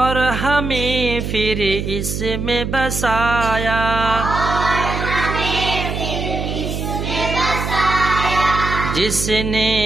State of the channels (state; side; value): noise; right; hum, 4 dB below the sound